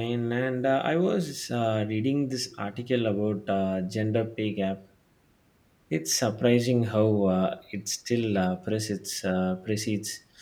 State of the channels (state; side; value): identical; both; correlation 1.00